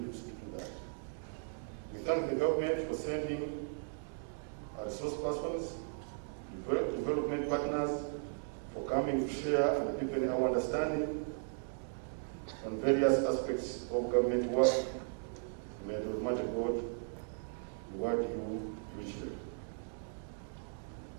to do that. We thank the government for sending our resource persons, development partners, for coming to share and deepen our understanding on various aspects of government work. May the Almighty God reward you richly.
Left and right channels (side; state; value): left; silent; digital silence